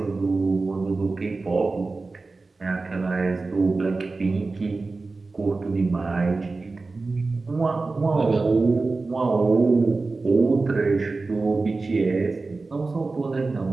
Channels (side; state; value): left; quieter; 3.7 dB